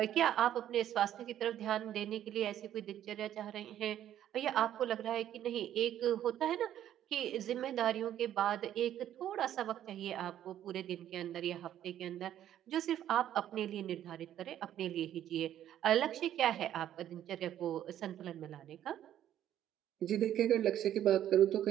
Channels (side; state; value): left; quieter; 11.3 dB